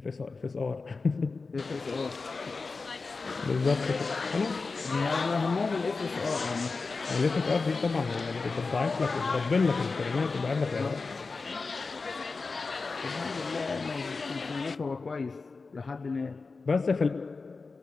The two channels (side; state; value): right; quieter; 4.2 dB